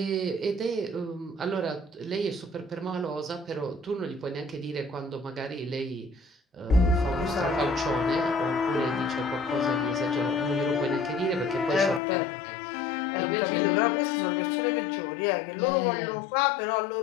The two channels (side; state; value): right; drops out; at 12.0 s